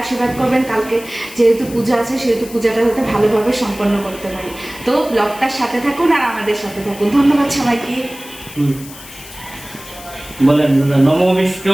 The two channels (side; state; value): left; noise; hiss, 16 dB below the sound